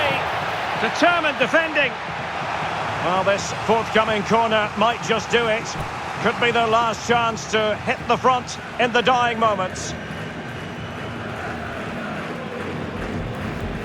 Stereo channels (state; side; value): identical; both; correlation 1.00